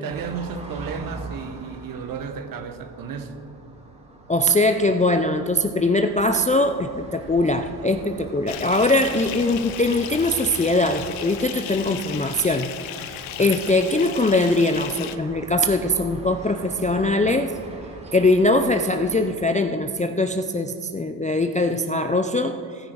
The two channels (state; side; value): normal; both; correlation 0.42